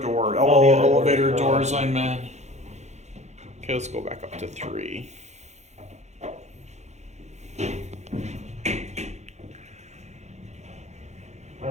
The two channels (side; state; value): left; late; 0.33 ms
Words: Oh, the other Elevator doors. doors, I meant. Okay, let's go back up to 3. I